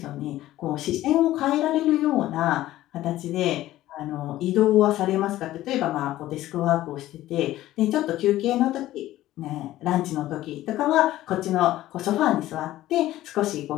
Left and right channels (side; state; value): right; quieter; 14.9 dB